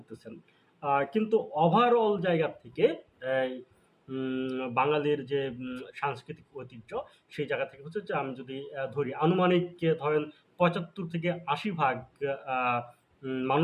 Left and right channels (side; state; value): both; identical; correlation 1.00